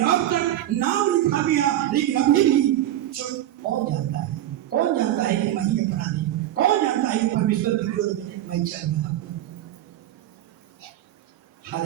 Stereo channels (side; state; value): left; quieter; 12.9 dB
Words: अब तक नाम लिखा गया, लेकिन अभी भी चुप। कौन जानता है, कौन जानता है कि मैं ही अपराधी, कौन जानता है कि परमेश्वर के विरोध में मैं चल रहा हूं।